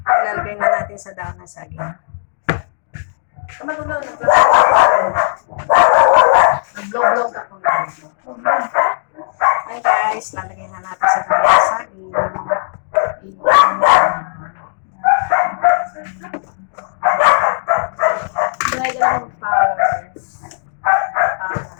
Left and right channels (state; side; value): silent; right; digital silence